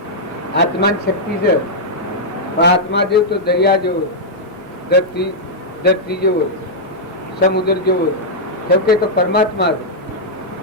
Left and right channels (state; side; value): normal; both; correlation -0.07